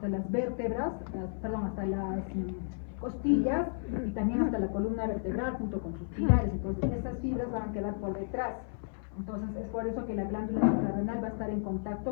vértebras, hasta las costillas, y también hasta la columna vertebral junto con sus pilares. Entonces esas fibras van a quedar por detrás. Entonces es por eso que la glándula suprarrenal va a estar en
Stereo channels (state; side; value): silent; right; 56 dB below the other